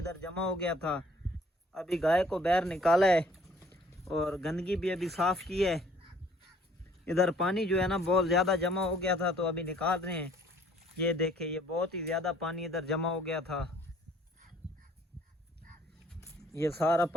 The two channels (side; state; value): both; normal; correlation 0.58